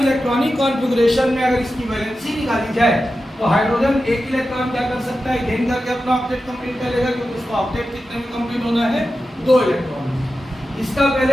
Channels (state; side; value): normal; both; correlation 0.92